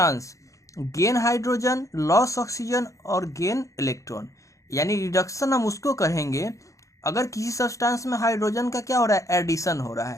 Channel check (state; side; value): late; right; 0.15 ms